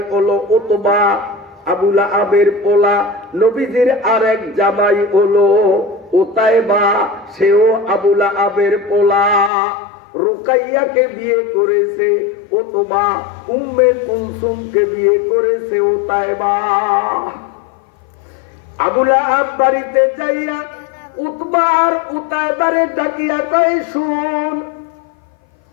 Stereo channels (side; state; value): right; drops out; at 9.5 s